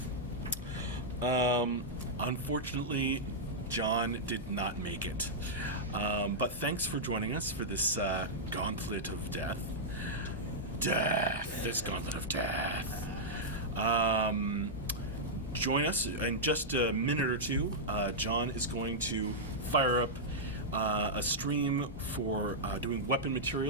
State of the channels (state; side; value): normal; both; correlation -0.09